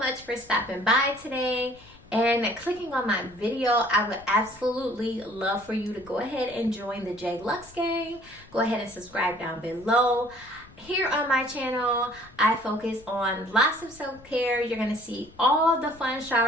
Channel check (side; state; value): left; noise; rumble, 24 dB below the sound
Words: for stopping by today and clicking on my video. I would absolutely love for you to go ahead and join the J Lux gang. Go ahead and subscribe down below. Here on my channel, I focus on lots of self-care. You're going to see all the fun